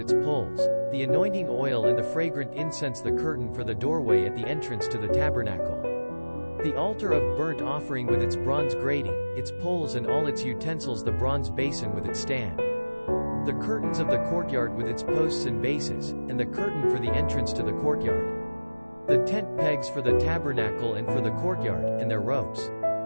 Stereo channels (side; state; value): both; inverted; correlation -1.00